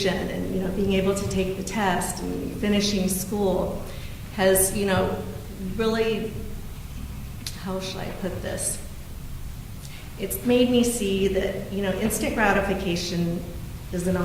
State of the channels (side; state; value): both; identical; correlation 1.00